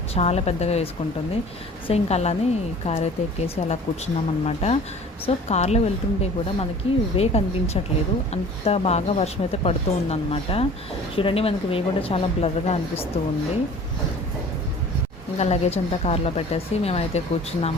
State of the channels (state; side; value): normal; both; correlation 0.45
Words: చాలా పెద్దగా వేసుకుంటుంది. సో ఇంకా అలానే కార్ అయితే ఎక్కేసి అలా కూర్చున్నాం అనమాట. సో కార్లో వెళ్తుంటే కూడా మనకి వే కనిపించట్లేదు, అంత బాగా వర్షం అయితే పడుతూ ఉందన్నమాట. చూడండి, మనకి వే కూడా చాలా బ్లర్గా అనిపిస్తూ ఉంది. ఇంకా లగేజ్ అంతా కార్లో పెట్టేసి మేమైతే